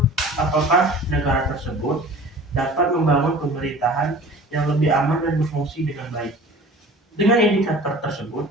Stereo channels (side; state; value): both; normal; correlation 0.43